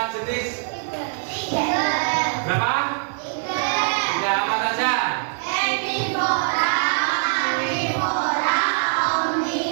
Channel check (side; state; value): left; silent; 64 dB below the other